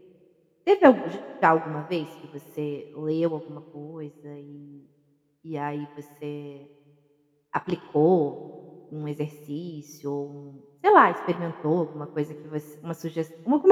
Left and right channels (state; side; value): identical; both; correlation 1.00